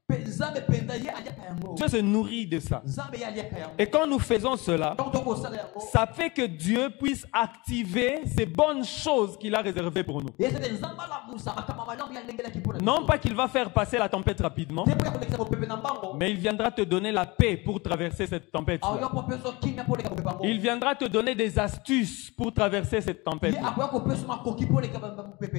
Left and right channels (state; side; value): quieter; right; 24.3 dB